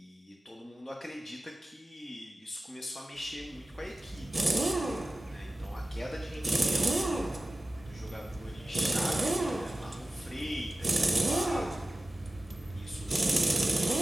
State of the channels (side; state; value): both; normal; correlation 0.96